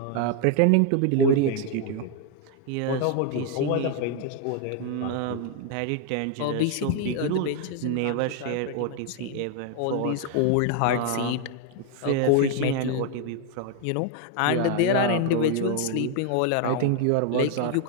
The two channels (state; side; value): different; both; correlation 0.00